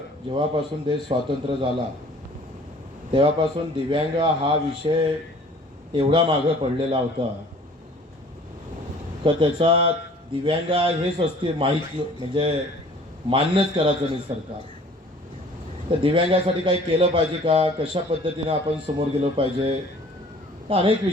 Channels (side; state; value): both; normal; correlation 0.51